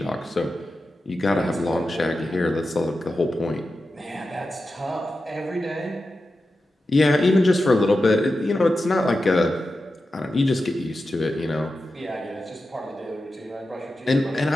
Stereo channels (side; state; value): both; normal; correlation 0.91